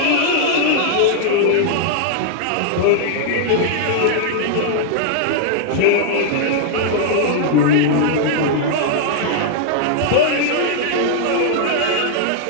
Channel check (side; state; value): both; different; correlation -0.01